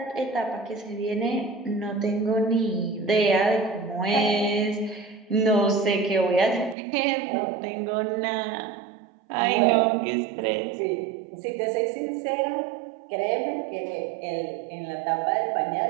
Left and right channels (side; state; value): left; drops out; at 6.8 s